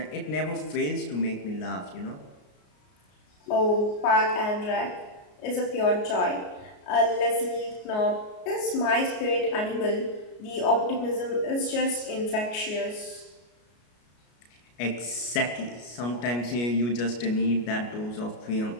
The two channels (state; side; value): late; right; 33 ms